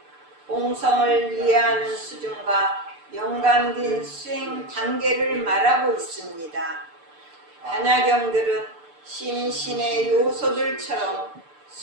공성을 이해하는 수준과 연관된 수행 단계를 말하고 있습니다. 반야경들은 심신의 요소들처럼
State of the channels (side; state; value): left; late; 6.8 ms